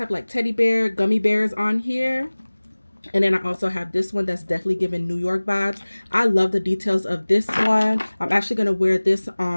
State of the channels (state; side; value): inverted; both; correlation -1.00